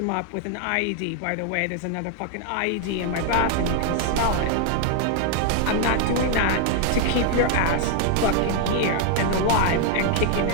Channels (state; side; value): different; both; correlation 0.00